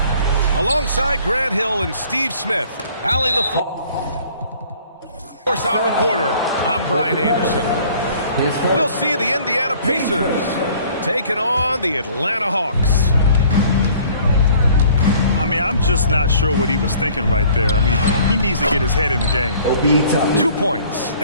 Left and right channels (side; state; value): both; inverted; correlation -0.54